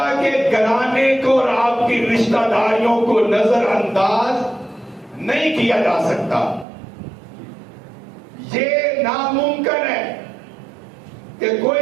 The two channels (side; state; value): left; drops out; at 6.7 s